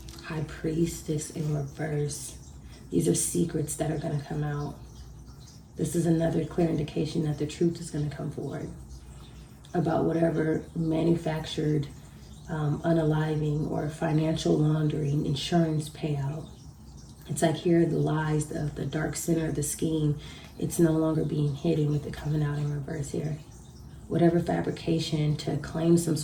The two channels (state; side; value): identical; both; correlation 1.00